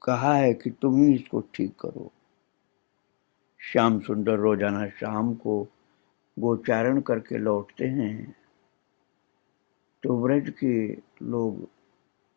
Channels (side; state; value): right; quieter; 36.0 dB